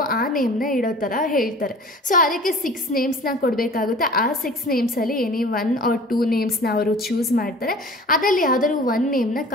ಆ ನೇಮ್ನ ಇಡೋ ಥರ ಹೇಳ್ತಾರೆ. ಸೊ ಅದಕ್ಕೆ 6 ನೇಮ್ಸ್ನ ಕೊಡಬೇಕಾಗುತ್ತೆ. ಆ 6 ನೇಮ್ಸಲ್ಲಿ ಎನಿ 1 or 2 ನೇಮ್ಸ್ನ ಅವರು ಚೂಸ್ ಮಾಡ್ತಾರೆ, ಅದರಲ್ಲಿ ಯಾವ್ದಾದ್ರು 1 ನೇಮ್ನ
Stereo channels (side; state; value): both; normal; correlation 0.44